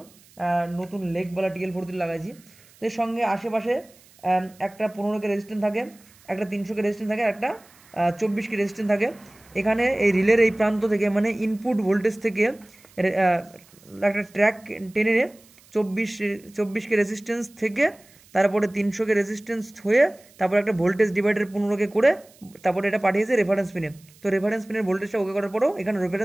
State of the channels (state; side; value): noise; right; hiss, 27 dB below the sound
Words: নতুন লেগওয়ালা TL43 লাগাইছি। তো এর সঙ্গে আশেপাশে একটা 15K রেজিস্ট্যান্স থাকে, একটা 300K রেজিস্ট্যান্স থাকে, একটা 24K রেজিস্ট্যান্স থাকে। এখানে এই রিলের এই প্রান্ত থেকে মানে ইনপুট ভোল্টেজ থেকে একটা ট্র্যাক টেনে 24K রেজিস্ট্যান্স থেকে তারপরে 300K রেজিস্ট্যান্স হয়ে তারপরে একটা ভোল্টেজ ডিভাইডার 15K করে তারপরে এটা পাঠিয়েছে রেফারেন্স পিনে। তো রেফারেন্স পিনের ভোল্টেজটা ওকে করার পরেও এখানে